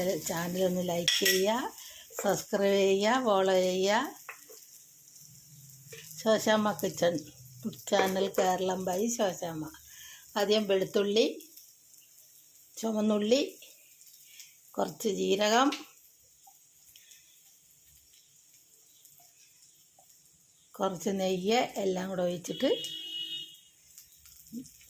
ചാനലൊന്ന് ലൈക്ക് ചെയ്യുക, സബ്സ്ക്രൈബ് ചെയ്യുക, ഫോളോ ചെയ്യുക. Shoshamma kitchen food channel Keralam by Shoshamma. ആദ്യം വെളുത്തുള്ളി, ചുവന്നുള്ളി, കുറച്ച് ജീരകം, കുറച്ച് നെയ്യ് എല്ലാം കൂടെ ഒഴിച്ചിട്ട്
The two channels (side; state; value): both; identical; correlation 1.00